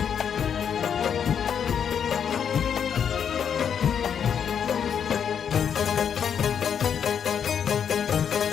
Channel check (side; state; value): right; quieter; 7.9 dB